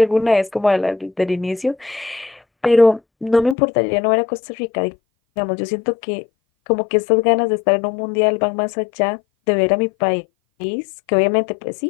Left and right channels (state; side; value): drops out; right; at 3.6 s